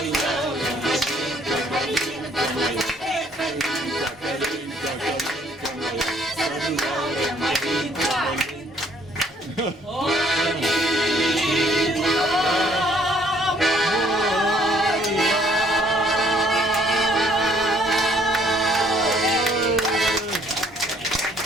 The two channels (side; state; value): both; normal; correlation 0.63